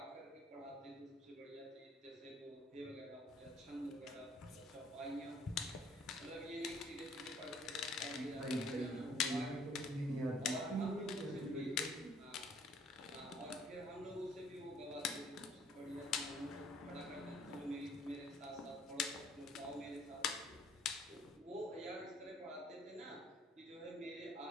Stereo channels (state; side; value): normal; both; correlation 0.59